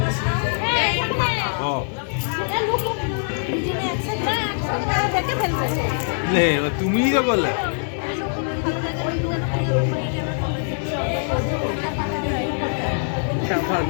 তুমিই তো বললে।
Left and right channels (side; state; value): right; silent; digital silence